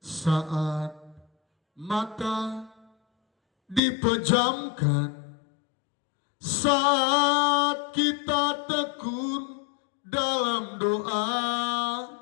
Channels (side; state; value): right; drops out; at 3.8 s